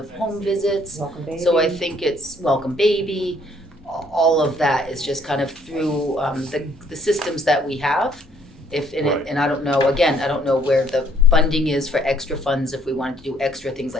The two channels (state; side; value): normal; both; correlation 0.63